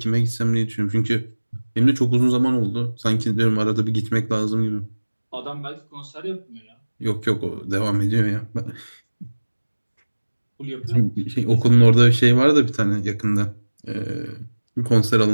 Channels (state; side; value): inverted; both; correlation -1.00